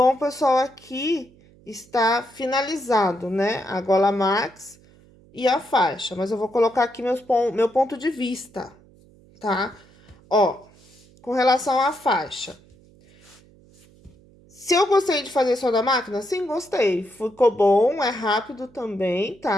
pessoal, aqui está finalizado, né? A gola max e a faixa, mas eu vou colocar aqui meu ponto de vista, tá? Ó, com relação à faixa. Se eu gostei de fazer só da máquina, sim, gostei. Ficou bom, é rápido também,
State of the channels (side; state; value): right; noise; hum, 27 dB below the sound